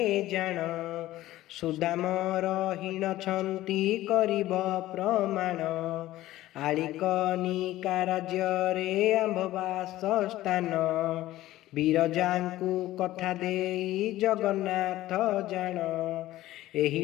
जान सुदाम रहीन छंती करिब प्रमाण आलिकनिका राज्ୟରେ आंभवास स्थान ବିରଜାଙ୍କୁ କଥା ଦେଇ ଜଗନ୍ନାଥ ଜାଣ ଏହି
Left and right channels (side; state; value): right; quieter; 15.5 dB